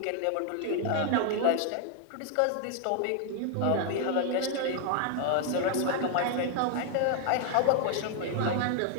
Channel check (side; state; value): both; different; correlation 0.00